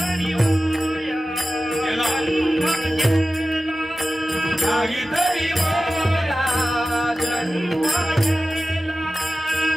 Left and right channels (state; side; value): normal; both; correlation 0.95